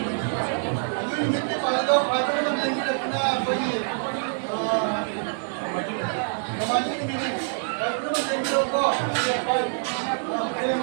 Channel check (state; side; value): silent; left; 61 dB below the other